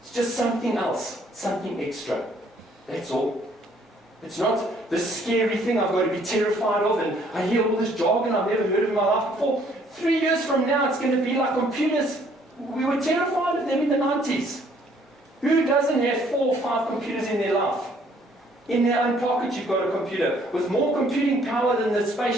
It's just something else, something extra. That's all. It's not this scary thing I've got to be terrified of, and I hear all this jargon I've never heard of in my life before. 3 years from now, it's going to be like computers. We were terrified of them in the 90s. Who doesn't have 4 or 5 computers in their life? In their own pocket, you've got a computer with more computing power than the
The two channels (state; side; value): normal; both; correlation 0.63